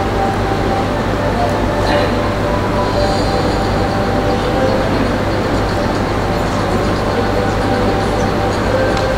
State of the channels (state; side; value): identical; both; correlation 1.00